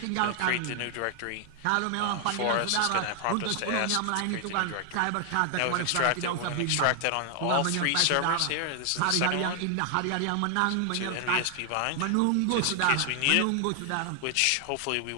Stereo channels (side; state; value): both; different; correlation 0.00